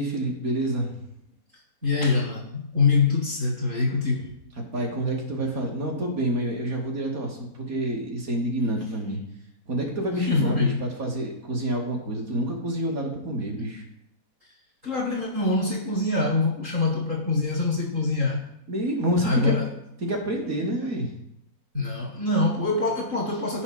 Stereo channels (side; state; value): left; late; 3.8 ms